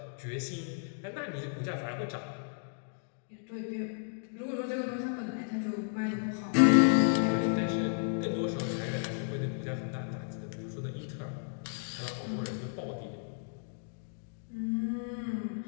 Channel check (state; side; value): silent; right; digital silence